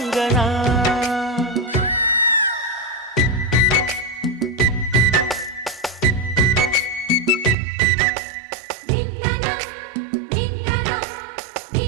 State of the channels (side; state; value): left; drops out; at 7.6 s